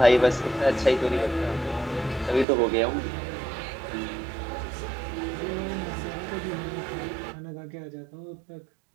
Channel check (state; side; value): drops out; left; at 2.5 s